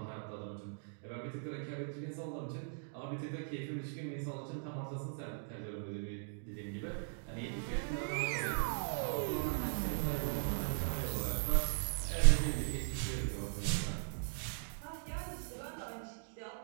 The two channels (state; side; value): silent; left; digital silence